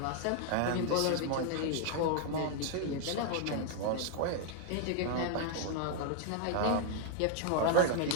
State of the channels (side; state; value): both; different; correlation 0.00